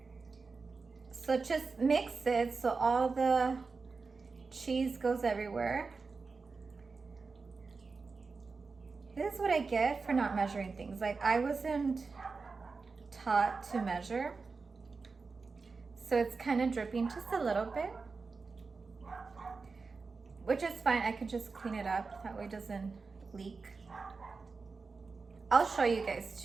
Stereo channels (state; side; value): quieter; left; 4.4 dB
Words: So just mix it so all the cheese goes everywhere. This is what I get for not measuring things. Like I wasn't taught to measure. So it's kind of dripping just a little bit, which is fine. I could just clean it up. That way it doesn't leak. I'll show you guys